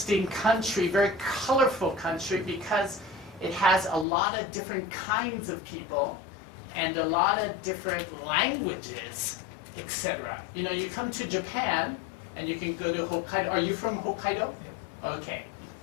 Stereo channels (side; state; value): right; drops out; at 4.0 s